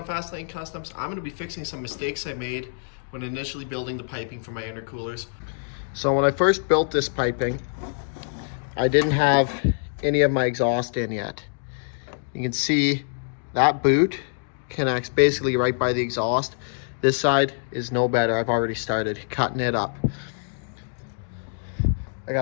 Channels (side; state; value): right; silent; digital silence